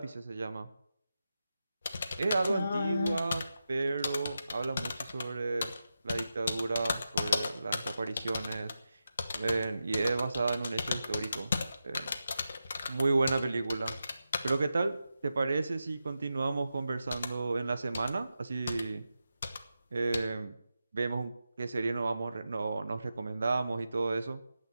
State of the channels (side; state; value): both; inverted; correlation -0.90